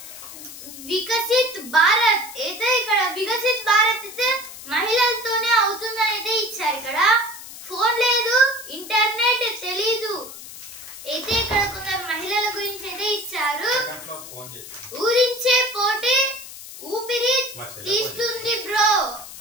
Viksit Bharat అయితే ఇక్కడ వికసిత్ భారత్ అయితే మహిళలతోనే అవుతుందని అయితే ఇచ్చారు. ఇక్కడ phone లేదు, internet తెలీదు అయితే ఇక్కడ కొందరు మహిళల గురించి అయితే ఇచ్చారు. ఊరించే పోటీ ఊపిరి తీస్తుంది బ్రో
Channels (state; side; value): noise; left; hiss, 14 dB below the sound